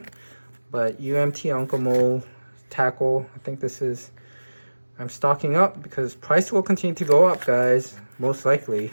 but UMT Uncle Mo tackle, I think this is, I'm stocking up because price will continue to go up, guys, most likely,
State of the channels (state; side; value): inverted; both; correlation -1.00